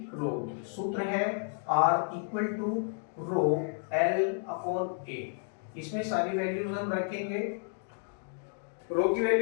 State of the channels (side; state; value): right; silent; 57 dB below the other